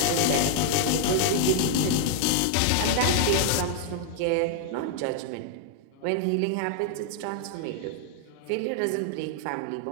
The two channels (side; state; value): both; different; correlation -0.01